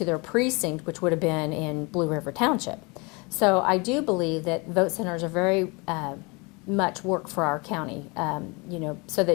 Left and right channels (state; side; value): quieter; right; 28.2 dB